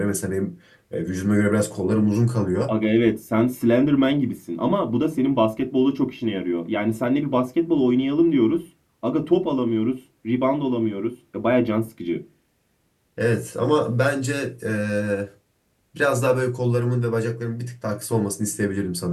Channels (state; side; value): identical; both; correlation 1.00